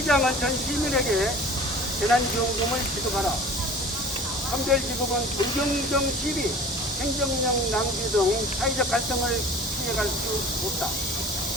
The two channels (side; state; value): both; normal; correlation 0.43